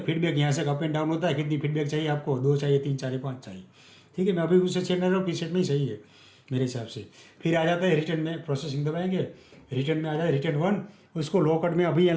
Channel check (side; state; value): both; identical; correlation 1.00